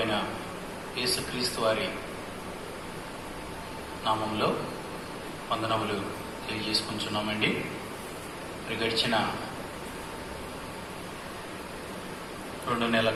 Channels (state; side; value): identical; both; correlation 1.00